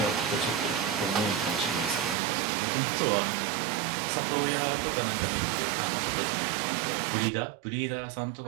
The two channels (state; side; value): drops out; left; at 2.1 s